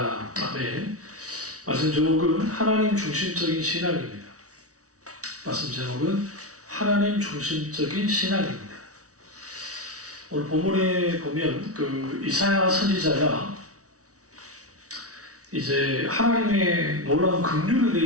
아멘. 말씀 제목은 하나님 중심적인 신앙입니다. 말씀 제목은 하나님 중심적인 신앙입니다. 오늘 본문에 보면 이사야 선지자가 이제 하나님의 놀라운 긍휼에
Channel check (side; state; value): left; late; 0.66 ms